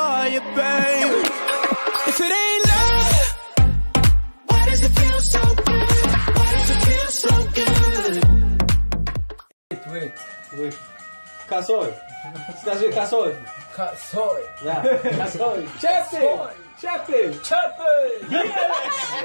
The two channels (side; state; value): both; inverted; correlation -1.00